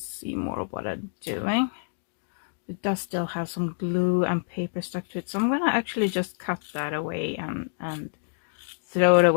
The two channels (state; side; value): silent; right; digital silence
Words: more of what I'm doing. It does still have some glue and paper stuck to it, so I'm gonna actually just cut that away and throw it